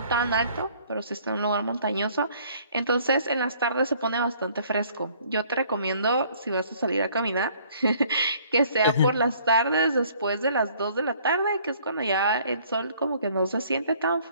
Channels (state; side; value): inverted; both; correlation -0.59